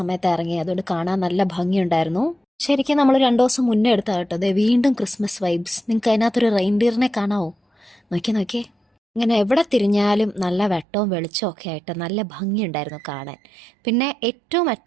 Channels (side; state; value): left; drops out; at 10.9 s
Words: ഇറങ്ങി, അതുകൊണ്ട് കാണാൻ നല്ല ഭംഗിയുണ്ടായിരുന്നു. ശരിക്കും നമ്മൾ 2 ദിവസം മുന്നേ എടുത്താ കേട്ടോ. അതെ, വീണ്ടും ക്രിസ്മസ് വൈബ്സ്. നിങ്ങൾക്ക് അതിനകത്തൊരു റെയിൻഡിയറിനെ കാണാവോ? നോക്കിയേ. ഇങ്ങനെ എവിടെ തിരിഞ്ഞാലും നല്ല വെട്ടവും വെളിച്ചവും ഒക്കെ ആയിട്ട് നല്ല ഭംഗിയുണ്ടായിരുന്നു കാണാൻ. പിന്നെ ഏറ്റവും